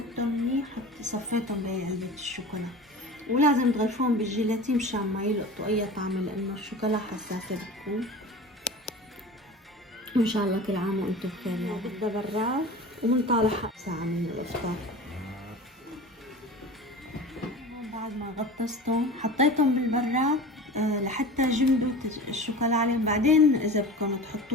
منيح، صفيتهم بهي علبة الشوكولا. ولازم تغلفوهم بالجيلاتين مشان ما يلقطوا اي طعم، لانه الشوكولا حساسة بتكون. وان شاء الله كل عام وانتم بخير. يعني بدها براد ومنطالع ساعة من الافطار. بعد ما غطستهم حطيتهم بالبراد لحتى جمدوا الشوكولا عليهم. بعدين اذا بدكم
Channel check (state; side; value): normal; both; correlation 0.35